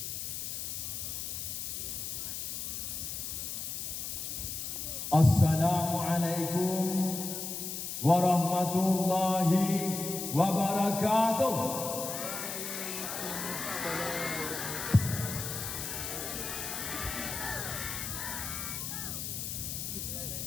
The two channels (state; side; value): noise; left; hiss, 5 dB below the sound